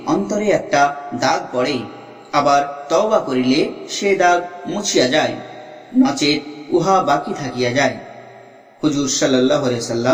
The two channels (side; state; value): both; identical; correlation 1.00